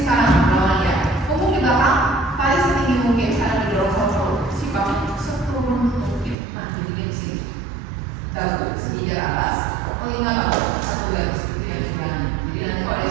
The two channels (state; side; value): drops out; left; at 6.4 s